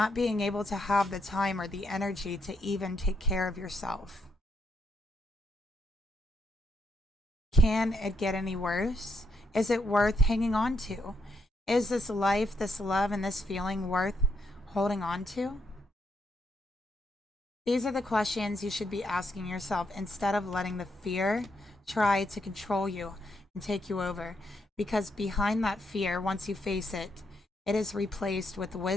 being able to have the time or the energy to even take care of yourself? Can it get any worse? Is it worth hanging on to? Is this life, this love, and this feeling worth holding on to? These are the questions you should be asking yourself instead of letting the fear try to control you and take you over. Because behind that fear, once you face it, it is replaced with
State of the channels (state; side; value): normal; both; correlation 0.78